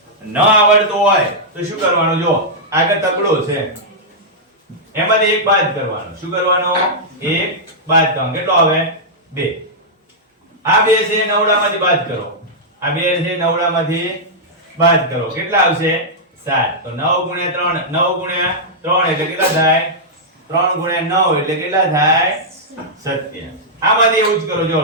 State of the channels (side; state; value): both; normal; correlation -0.09